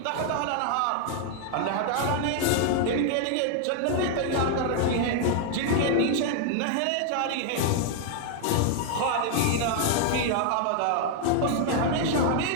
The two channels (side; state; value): both; different; correlation 0.00